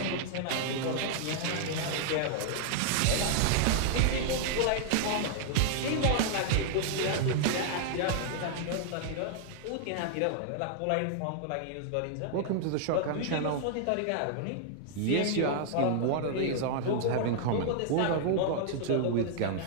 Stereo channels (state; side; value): different; both; correlation -0.01